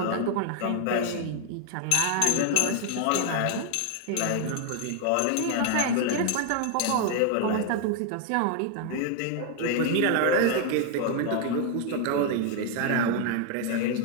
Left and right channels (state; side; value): different; both; correlation 0.00